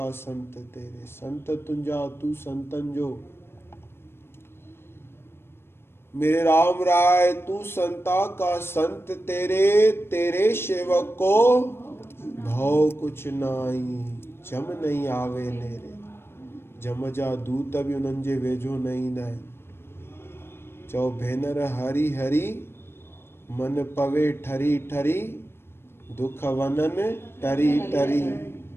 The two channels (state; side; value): late; right; 0.12 ms